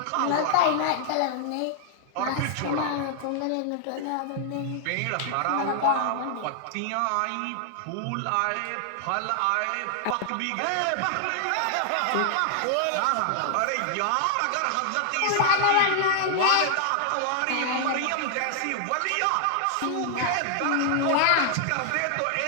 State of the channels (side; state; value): both; different; correlation 0.00